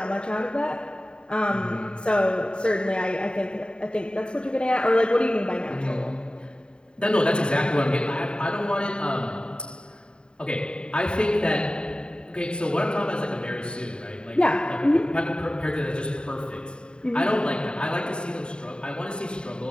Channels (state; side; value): late; right; 0.050 ms